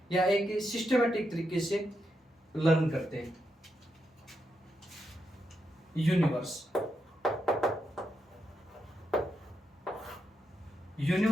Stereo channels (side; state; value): both; normal; correlation 0.84